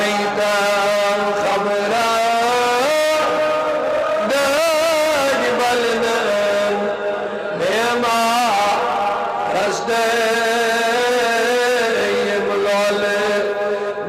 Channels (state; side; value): identical; both; correlation 1.00